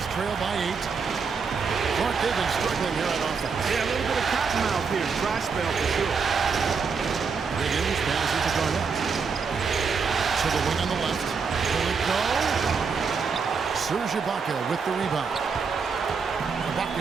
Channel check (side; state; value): left; quieter; 5.4 dB